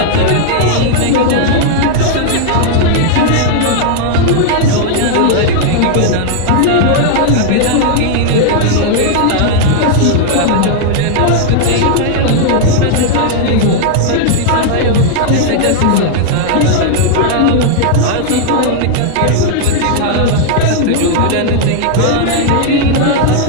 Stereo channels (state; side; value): different; both; correlation 0.00